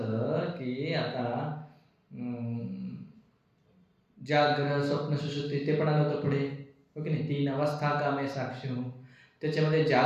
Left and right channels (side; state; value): both; identical; correlation 1.00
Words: की आता जाग्रत, स्वप्न, सुषुप्ती, ते पण आलं होतं पुढे, हो की नाही? 3 अवस्था का मैं साक्षी हूँ. त्याच्यामध्ये